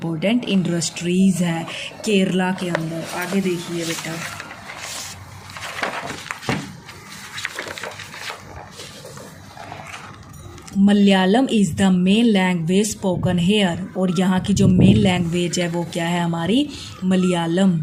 इंडस्ट्रीज़ है केरला के अंदर। आगे देखिए बेटा, Malayalam is the main language spoken here, और यहाँ की जो मेन लैंग्वेज है वो क्या है? हमारी Malayalam.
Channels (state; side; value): identical; both; correlation 1.00